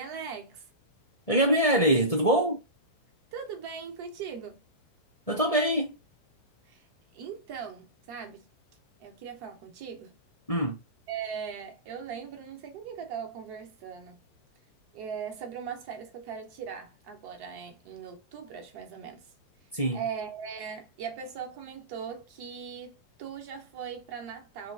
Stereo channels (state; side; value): late; right; 1.7 ms